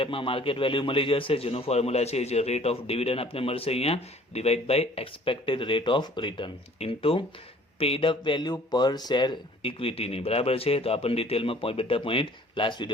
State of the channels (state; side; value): normal; both; correlation 0.53